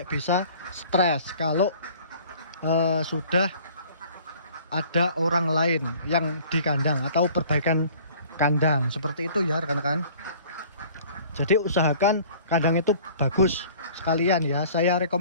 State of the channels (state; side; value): inverted; both; correlation -0.50